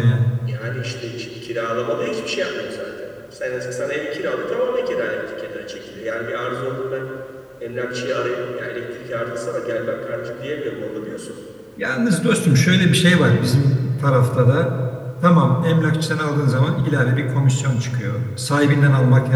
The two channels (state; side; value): identical; both; correlation 1.00